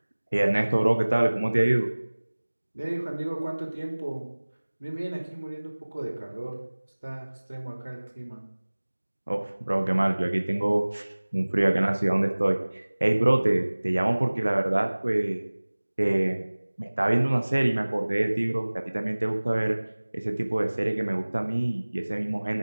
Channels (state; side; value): inverted; both; correlation -1.00